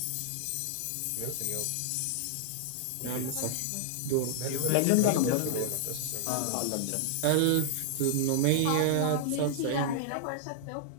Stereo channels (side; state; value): both; different; correlation -0.01